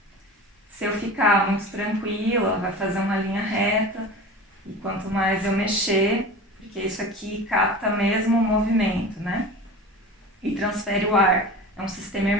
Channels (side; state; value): both; normal; correlation 0.34